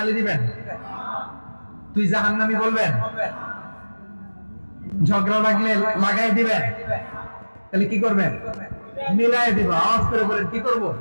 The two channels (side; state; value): both; inverted; correlation -1.00